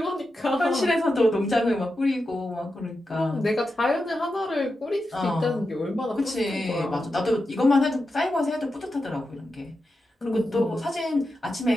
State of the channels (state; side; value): normal; both; correlation 0.89